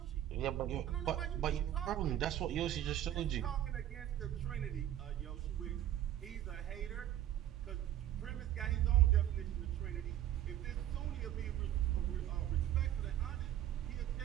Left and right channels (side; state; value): left; quieter; 12.1 dB